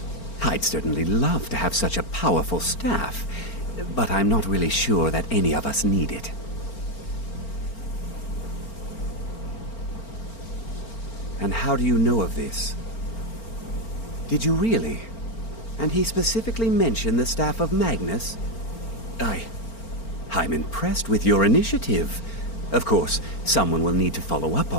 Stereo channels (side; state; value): right; late; 4.4 ms